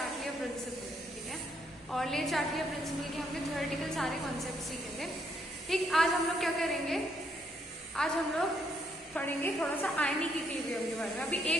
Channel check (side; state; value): both; normal; correlation 0.73